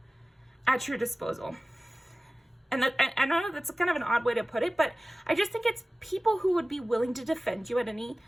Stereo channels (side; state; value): both; normal; correlation 0.97